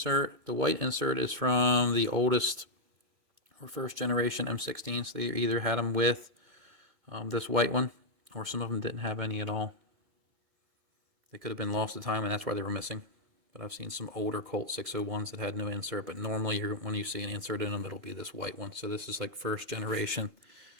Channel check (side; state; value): left; late; 2.1 ms